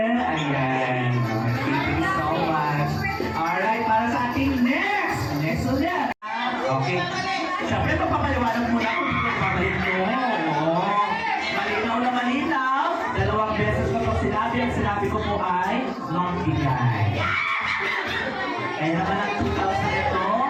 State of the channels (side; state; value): both; identical; correlation 1.00